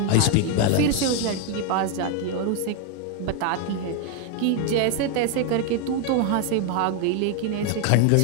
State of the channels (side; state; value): both; different; correlation 0.01